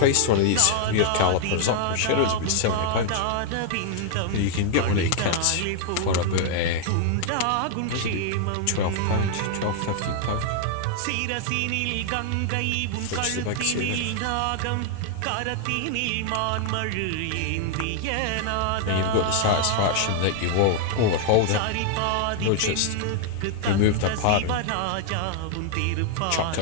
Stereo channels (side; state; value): both; different; correlation 0.00